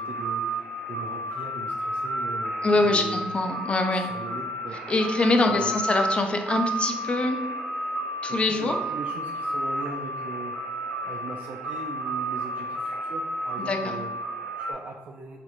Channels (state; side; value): normal; both; correlation 0.65